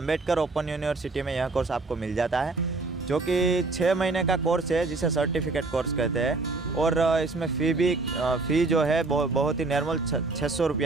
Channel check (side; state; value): left; quieter; 3.6 dB